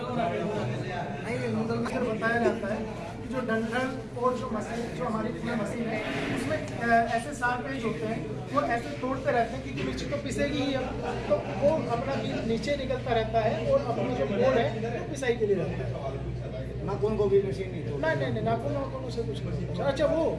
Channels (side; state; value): both; identical; correlation 1.00